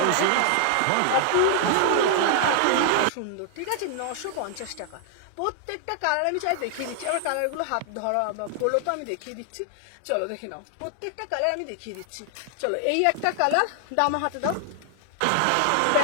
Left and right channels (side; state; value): both; different; correlation 0.00